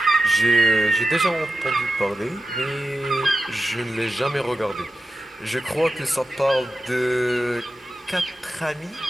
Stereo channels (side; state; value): both; normal; correlation 0.91